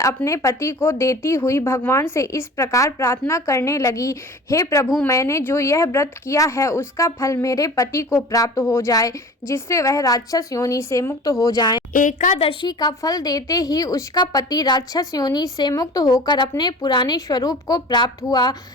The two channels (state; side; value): normal; both; correlation 0.40